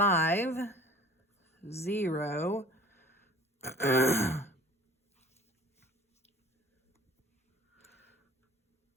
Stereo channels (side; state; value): both; normal; correlation 0.47